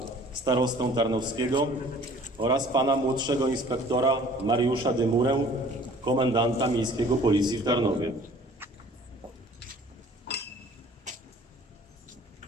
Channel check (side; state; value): both; normal; correlation 0.51